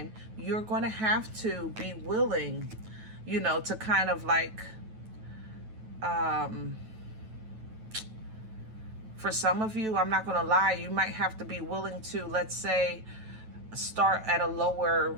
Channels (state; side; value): late; left; 9.2 ms